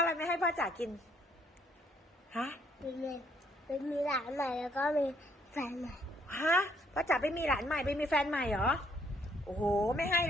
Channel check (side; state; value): both; normal; correlation 0.67